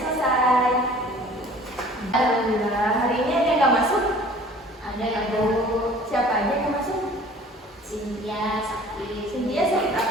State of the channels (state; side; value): normal; both; correlation 0.49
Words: Alhamdulillah. Hari ini ada yang nggak masuk? Ada ya, Bu. Siapa aja yang masuk? Cynthia sakit. Cynthia sakit